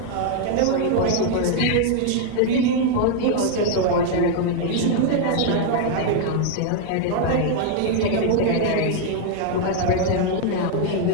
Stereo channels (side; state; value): both; different; correlation 0.00